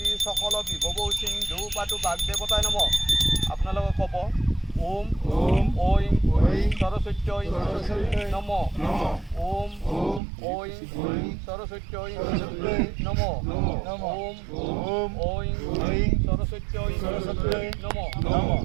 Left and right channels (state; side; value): drops out; left; at 10.2 s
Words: সকল বিভব সিন্ধু পাতু বাগদেৱতাই নম আপোনালোকে ক'ব ওম ঐং সৰস্বত্যৈ নম ওম ঐং সৰস্বত্যৈ নম ওম ঐং সৰস্বত্যৈ নম